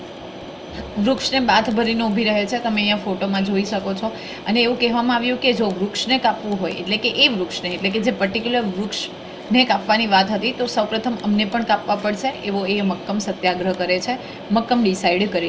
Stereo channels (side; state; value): both; identical; correlation 1.00